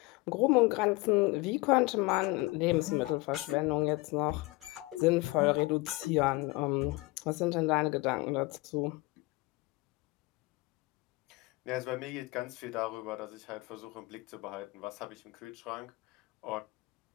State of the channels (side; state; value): right; quieter; 23.0 dB